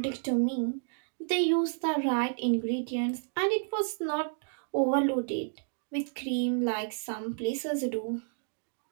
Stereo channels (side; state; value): left; silent; digital silence